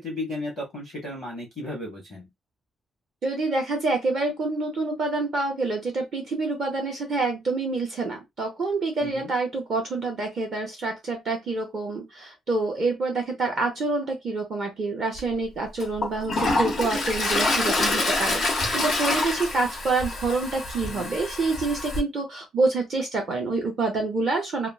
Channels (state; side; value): normal; both; correlation 0.70